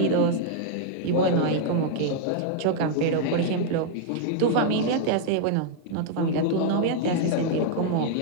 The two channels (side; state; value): both; different; correlation -0.01